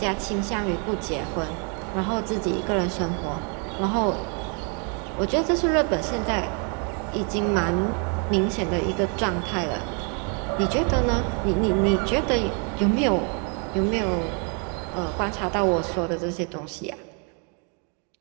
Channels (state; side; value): quieter; left; 38.0 dB